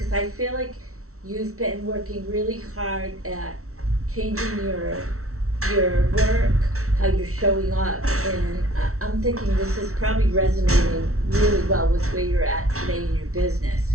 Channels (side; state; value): left; late; 0.63 ms